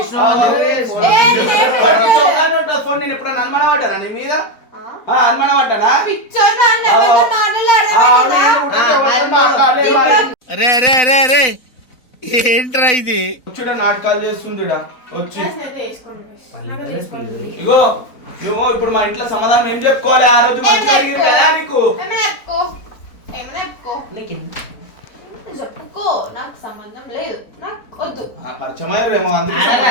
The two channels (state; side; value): late; right; 4.0 ms